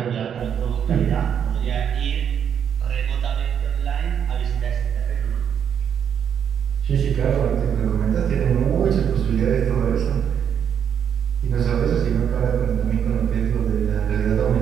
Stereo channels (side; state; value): left; quieter; 8.3 dB